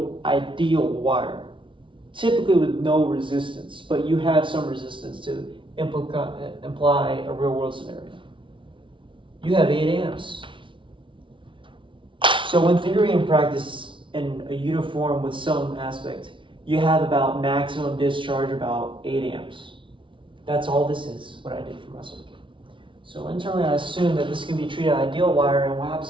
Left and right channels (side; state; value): left; late; 0.25 ms